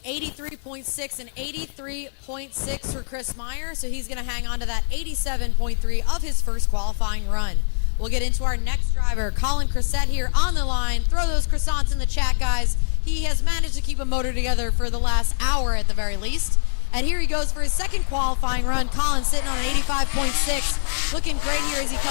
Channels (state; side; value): silent; right; 63 dB below the other